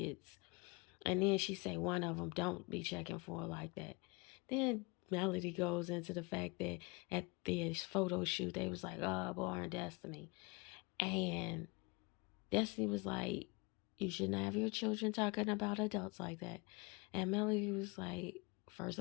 And then she say one of them don't be checking for her like that. Then Melody goes into the fact that at this photo shoot, they was like, oh, Born Destiny. And Destiny was like, you shouldn't have your children talking about adults like that. And Melody was like, first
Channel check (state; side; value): quieter; right; 27.8 dB